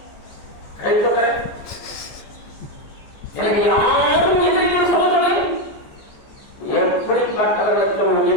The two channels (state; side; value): late; right; 14 ms